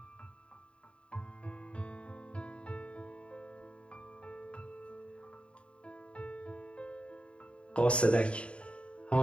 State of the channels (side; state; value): right; late; 0.059 ms